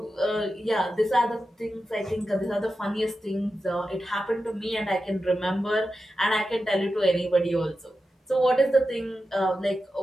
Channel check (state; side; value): normal; both; correlation 0.91